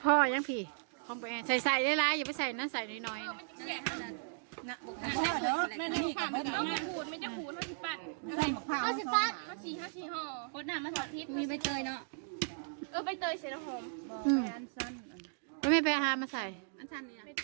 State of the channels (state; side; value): silent; left; digital silence